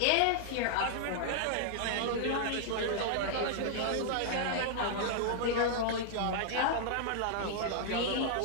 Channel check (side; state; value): both; different; correlation -0.01